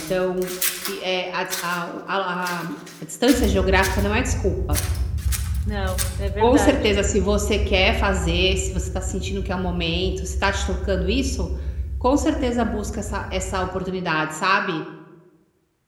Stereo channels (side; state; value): both; identical; correlation 1.00